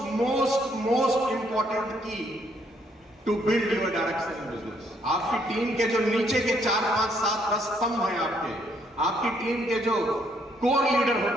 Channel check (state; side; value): normal; both; correlation 0.70